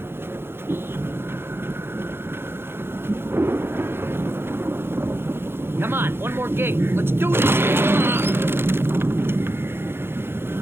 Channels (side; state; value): left; late; 0.11 ms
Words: Come on, one more gate. Let's do this. Ah!